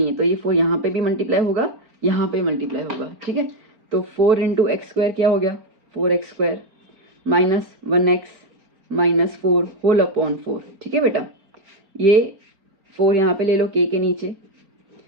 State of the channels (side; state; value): left; late; 4.4 ms